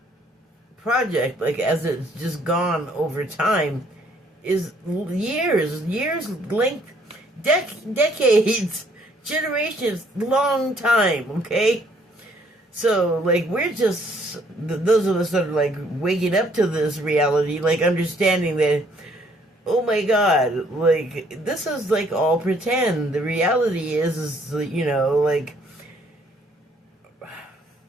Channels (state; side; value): normal; both; correlation 0.65